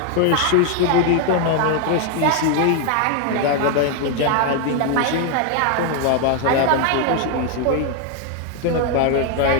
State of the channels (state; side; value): different; both; correlation 0.01